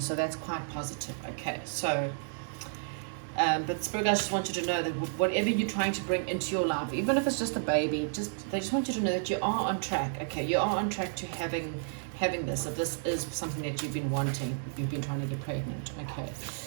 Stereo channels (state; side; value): silent; left; digital silence